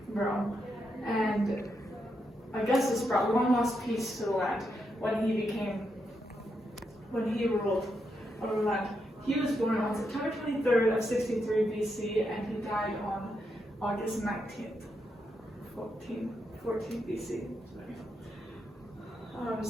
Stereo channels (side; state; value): both; normal; correlation 0.82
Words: Rome. And Augustus brought long lost peace to the land when he ruled over the land. He was born on September 23rd of 63 BC, and he died on August 19th, 14 BC.